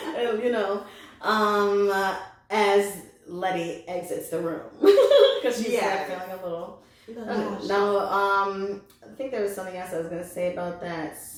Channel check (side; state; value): both; identical; correlation 1.00